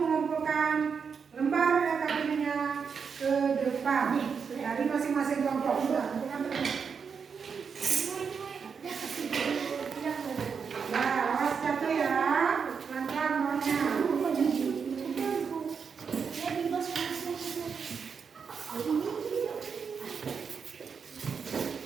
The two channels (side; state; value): left; quieter; 6.1 dB